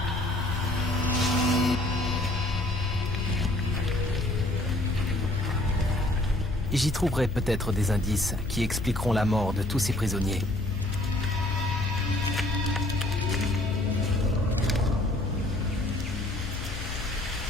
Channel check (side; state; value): left; noise; hum, 7 dB below the sound